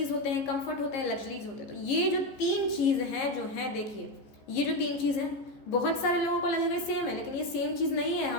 होते हैं, कंफर्ट होते हैं, लग्जरीज होते हैं। तो ये जो 3 चीज़ हैं जो हैं, देखिए ये जो 3 चीज़ हैं, बहुत सारे लोगों को लगेगा सेम है, लेकिन ये सेम चीज़ नहीं है,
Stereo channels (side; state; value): right; late; 15 ms